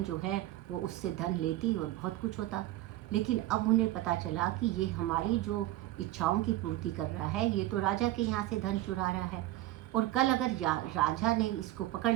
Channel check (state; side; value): quieter; left; 15.8 dB